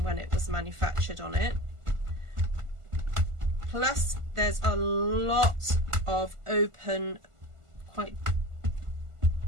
when it was manufactured on it. Plus, there's a lot of open, quite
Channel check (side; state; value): left; late; 1.5 ms